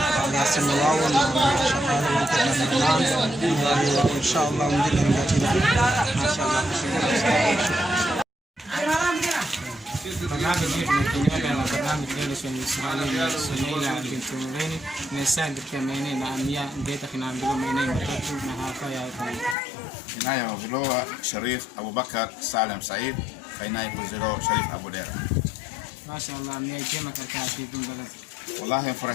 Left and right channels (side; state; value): right; drops out; at 19.6 s